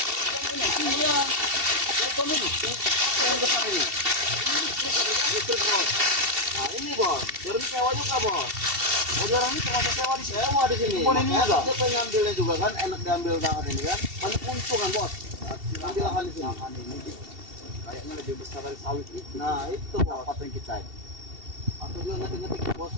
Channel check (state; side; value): late; left; 2.7 ms